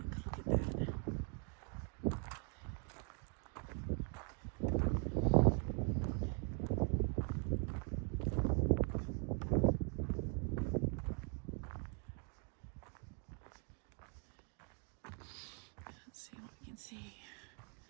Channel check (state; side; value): quieter; left; 39.8 dB